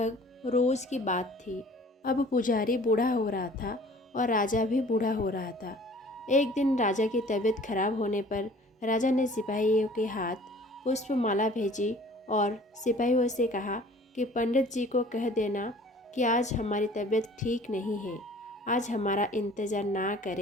रोज की बात थी। अब पुजारी बूढ़ा हो रहा था और राजा भी बूढ़ा हो रहा था। एक दिन राजा की तबीयत खराब होने पर राजा ने सिपाहियों के हाथ पुष्पमाला भेजी और सिपाहियों से कहा कि पंडित जी को कह देना कि आज हमारी तबीयत ठीक नहीं है, आज हमारा इंतज़ार ना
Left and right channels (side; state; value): both; normal; correlation 0.50